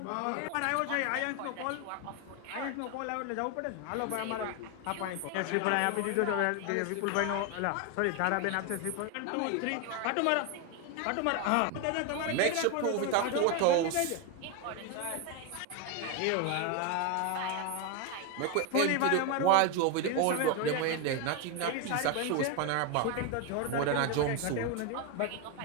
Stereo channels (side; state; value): both; different; correlation 0.02